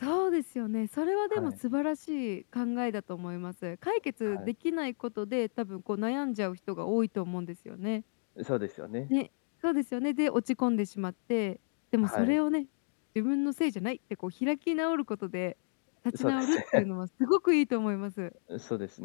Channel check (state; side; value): silent; right; digital silence